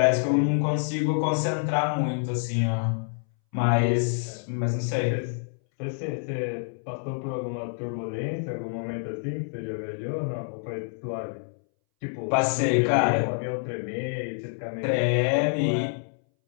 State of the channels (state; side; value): silent; right; 60 dB below the other